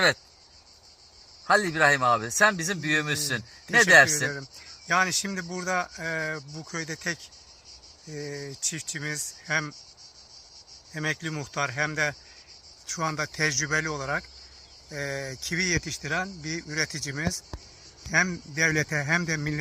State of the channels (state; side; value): identical; both; correlation 1.00